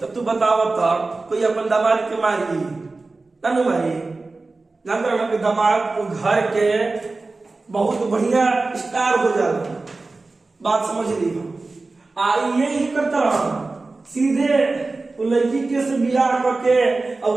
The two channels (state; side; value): quieter; left; 3.5 dB